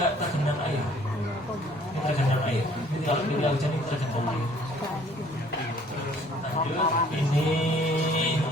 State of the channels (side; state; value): both; normal; correlation 0.57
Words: tergenang air. Ini tergenang air. Jadi kalau ketika hujan ini tergenang air. Lanjut, ini